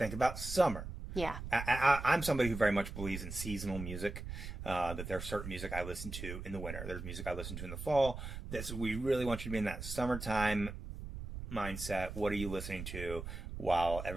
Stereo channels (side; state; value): right; noise; rumble, 8 dB below the sound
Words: about summer. Yeah. I'm somebody who very much believes in seasonal music, that there's certain music I listen to in the winter. There's music I listen to in the fall. We really want you to be in that summertime mindset. What are you listening to while